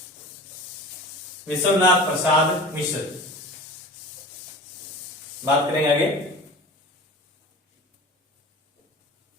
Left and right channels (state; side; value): normal; both; correlation 0.37